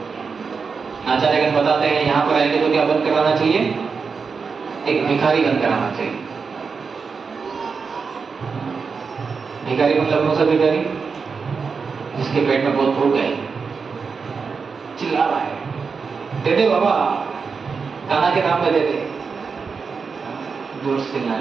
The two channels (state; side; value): quieter; left; 5.2 dB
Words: आचार्यगण बताते हैं यहाँ पर आएंगे तो क्या बंद कराना चाहिए? एक भिखारी बंद कराना चाहिए। भिखारी मतलब कौन सा भिखारी? जिसके पेट में बहुत भूख है, चिल्ला रहा है, दे दे बाबा, खाना के नाम पे दे दे, जोर से चिल्ला